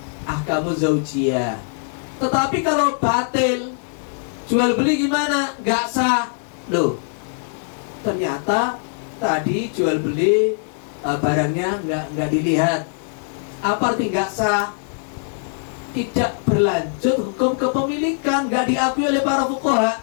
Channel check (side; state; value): right; silent; digital silence